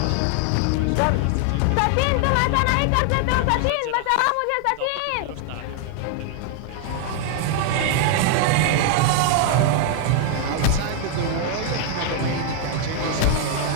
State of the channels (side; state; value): both; different; correlation 0.00